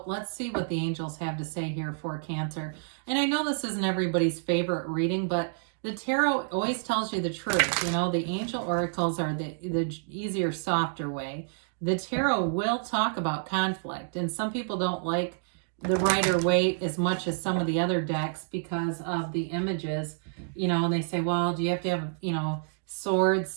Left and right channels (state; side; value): silent; left; digital silence